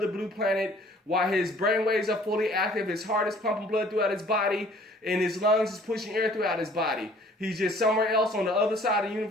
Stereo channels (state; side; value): normal; both; correlation 0.55